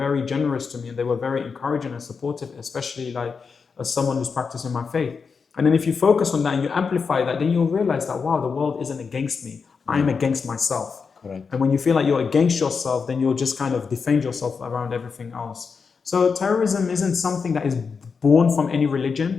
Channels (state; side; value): quieter; right; 5.4 dB